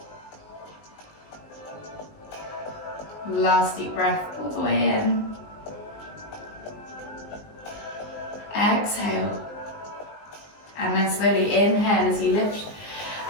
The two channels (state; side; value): late; right; 19 ms